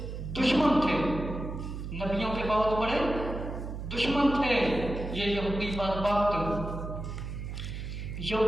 دشمن تھے، نبیوں کے بہت بڑے دشمن تھے یہ یہودی بدبخت۔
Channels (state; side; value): noise; right; hum, 7 dB below the sound